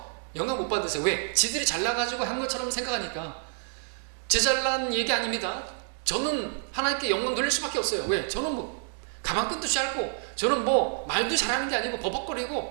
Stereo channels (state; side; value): silent; left; 59 dB below the other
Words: 영광 못 받으세요. 왜? 지들이 잘나가지고 한 것처럼 생각하니까. 제 잘난 얘기 아닙니다. 저는 하나님께 영광 돌릴 수밖에 없어요. 왜? 저는 뭐 가방끈도 짧고, 저는 뭐 말도 잘하는 게 아니고